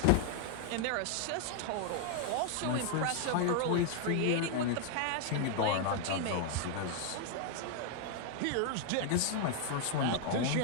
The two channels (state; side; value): different; both; correlation 0.00